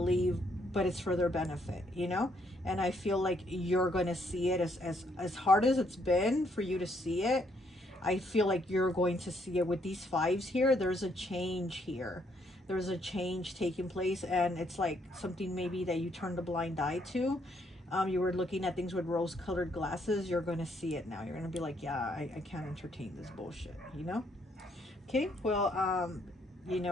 but it's for their benefit, you know? And I feel like you're going to see it as hard as it's been for you to see it. I feel like you're going to see it with these fives here. There's a change here. There's a change taking place, and it's like something maybe that you turned a blind eye to. You were looking at things with rose-colored glasses. You're going to see it now. You're going to be like, yeah, I can't entertain this bullshit, you know? Okay, well, you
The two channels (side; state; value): both; normal; correlation 0.71